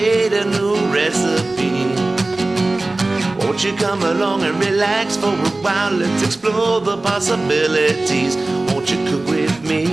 a new recipe. Won't you come along and relax for a while? Let's explore the possibilities. Won't you cook with me?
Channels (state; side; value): quieter; left; 3.0 dB